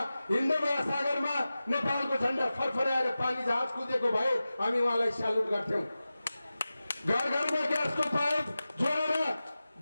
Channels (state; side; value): inverted; both; correlation -0.95